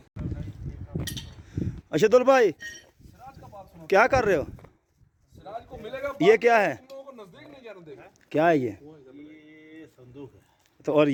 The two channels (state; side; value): identical; both; correlation 1.00